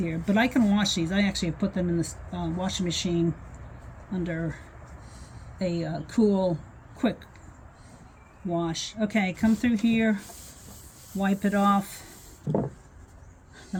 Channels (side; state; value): both; identical; correlation 1.00